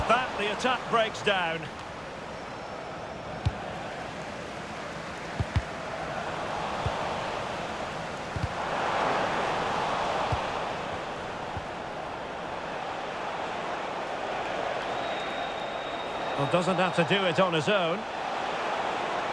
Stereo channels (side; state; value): both; identical; correlation 1.00